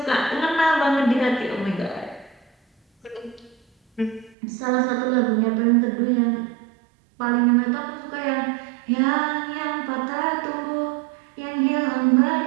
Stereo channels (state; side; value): drops out; left; at 4.4 s